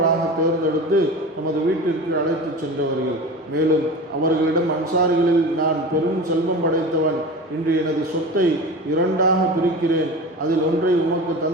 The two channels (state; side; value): normal; both; correlation 0.32